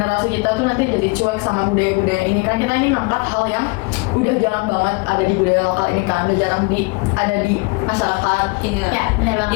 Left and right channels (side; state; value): right; quieter; 28.3 dB